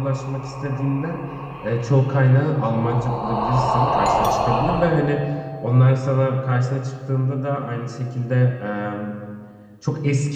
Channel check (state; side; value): identical; both; correlation 1.00